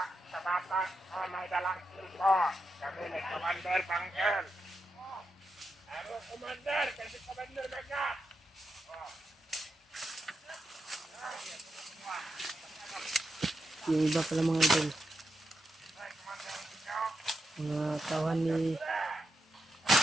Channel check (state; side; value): normal; both; correlation 0.86